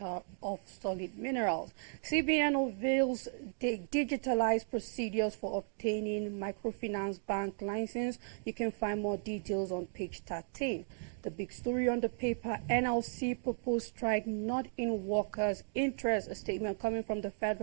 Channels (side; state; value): left; silent; digital silence